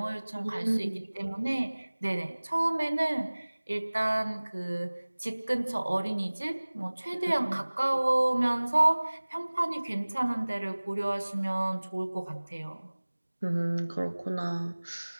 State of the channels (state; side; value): inverted; both; correlation -1.00